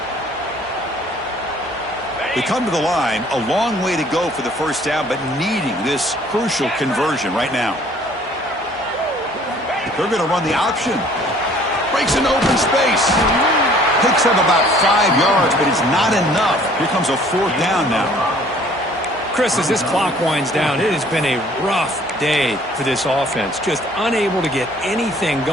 They come to the line, a long way to go for the first down, but needing this crucial conversion right now. They're going to run the option. Breaks into open space. Picks up about 5 yards, but it's not enough. Here comes a 4th down now. Chris, as this clock winds down, it has been a rough day for this offense. Just unable to get anything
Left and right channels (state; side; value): normal; both; correlation 0.56